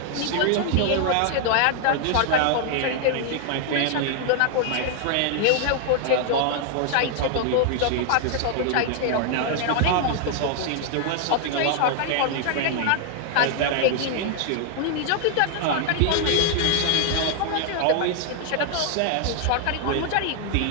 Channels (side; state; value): both; different; correlation 0.00